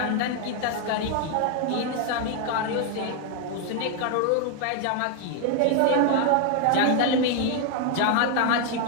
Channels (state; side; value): different; both; correlation 0.00